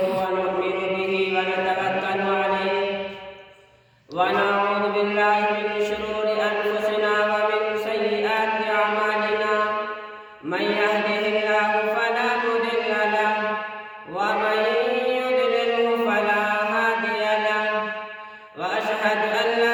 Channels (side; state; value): both; identical; correlation 1.00